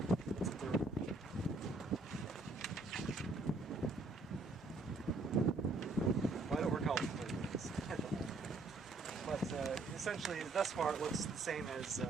It's a 3rd one. Well, I don't recall what the 3rd one is at the moment. But essentially, thus far, it looks the same as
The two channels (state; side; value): quieter; left; 3.2 dB